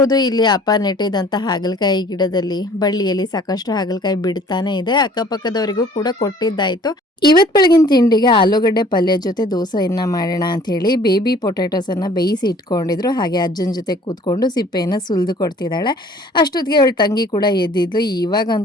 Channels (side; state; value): both; normal; correlation 0.53